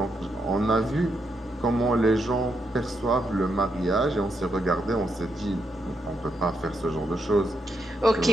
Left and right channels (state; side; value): normal; both; correlation 0.80